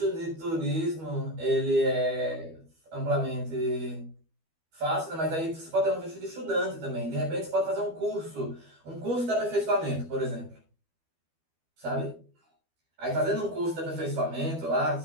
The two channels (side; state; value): left; late; 12 ms